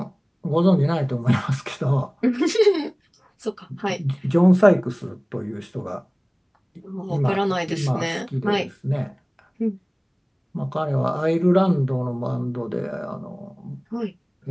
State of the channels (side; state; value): both; identical; correlation 1.00